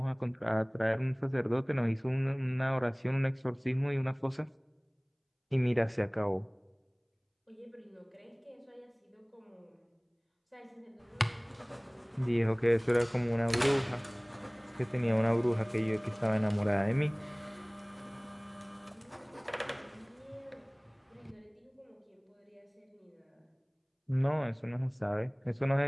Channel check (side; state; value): both; identical; correlation 1.00